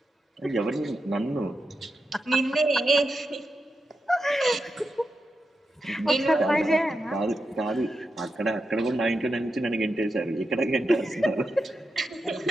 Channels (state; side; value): normal; both; correlation 0.88